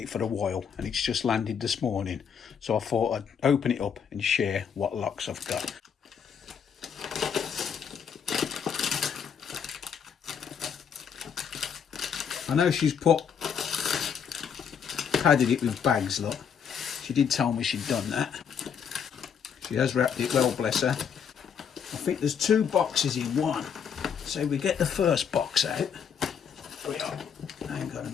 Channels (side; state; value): right; quieter; 7.4 dB